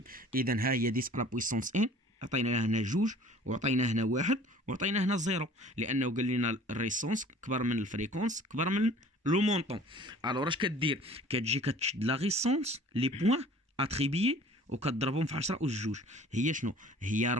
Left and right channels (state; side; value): normal; both; correlation 0.49